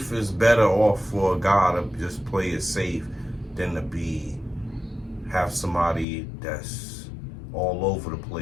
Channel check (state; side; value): drops out; right; at 6.1 s